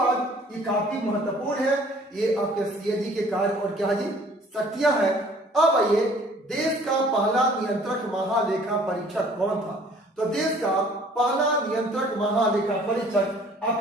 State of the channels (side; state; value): both; normal; correlation 0.54